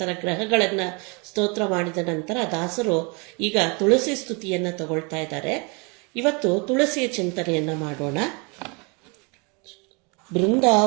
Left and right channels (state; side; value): quieter; left; 31.3 dB